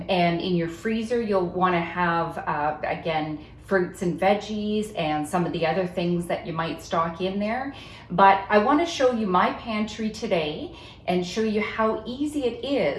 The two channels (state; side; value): identical; both; correlation 1.00